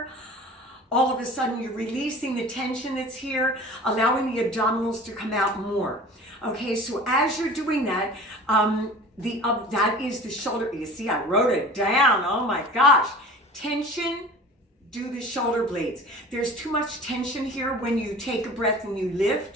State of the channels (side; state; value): both; normal; correlation 0.41